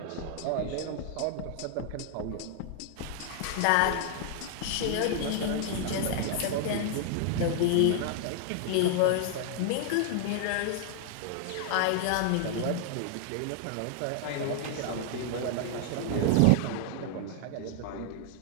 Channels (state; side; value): different; both; correlation -0.01